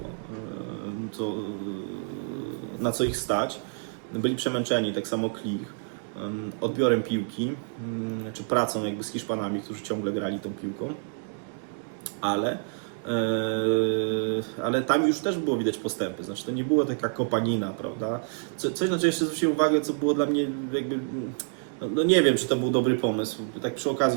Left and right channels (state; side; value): silent; left; 59 dB below the other